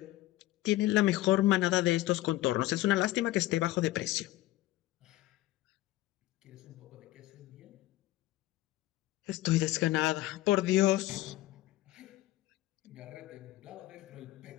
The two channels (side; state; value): right; quieter; 16.3 dB